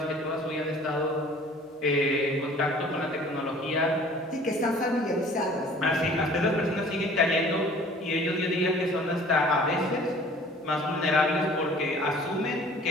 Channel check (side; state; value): both; normal; correlation 0.50